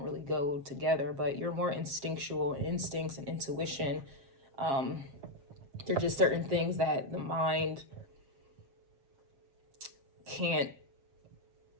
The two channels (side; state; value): left; late; 7.4 ms